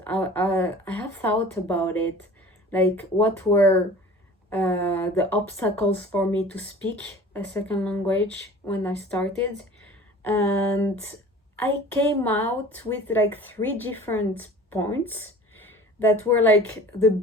I have thought about it, like what were the obstacles for me to speak a second language when I started. And I came out with like three different points that were like the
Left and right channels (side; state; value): both; normal; correlation 0.43